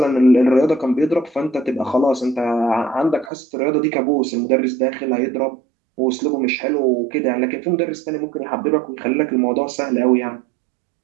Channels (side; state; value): left; drops out; at 3.3 s